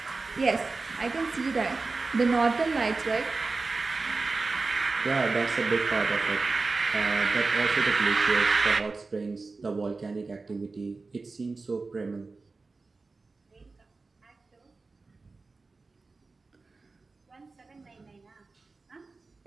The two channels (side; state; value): left; quieter; 3.8 dB